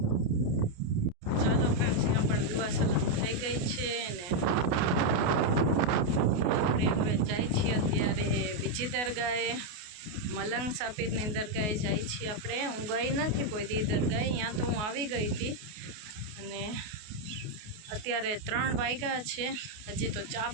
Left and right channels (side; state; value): left; late; 28 ms